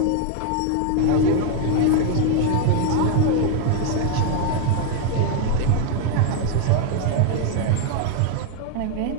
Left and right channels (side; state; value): both; different; correlation 0.01